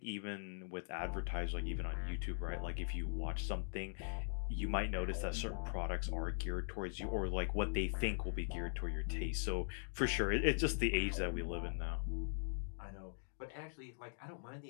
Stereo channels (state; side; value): silent; right; digital silence